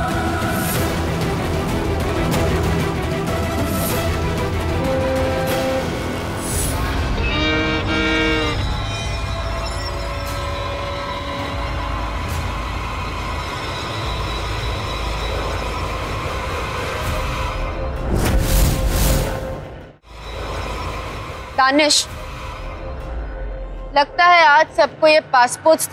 दानिश, लगता है आज सबको ये पासपोर्ट्स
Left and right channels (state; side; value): identical; both; correlation 1.00